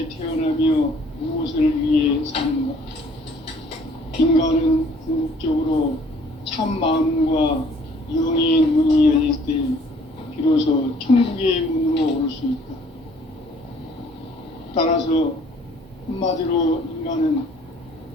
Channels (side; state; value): both; normal; correlation 0.58